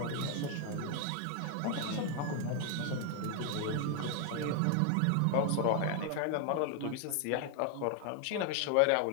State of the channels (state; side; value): different; both; correlation 0.00